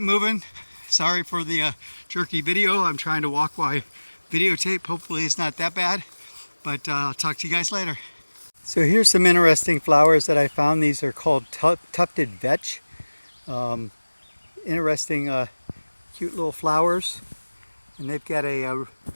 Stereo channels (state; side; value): inverted; both; correlation -1.00